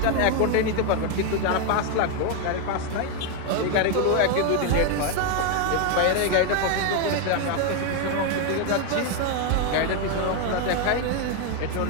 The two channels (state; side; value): different; both; correlation 0.01